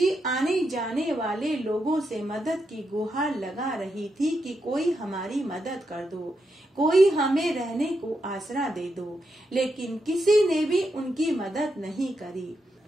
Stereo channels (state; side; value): normal; both; correlation 0.84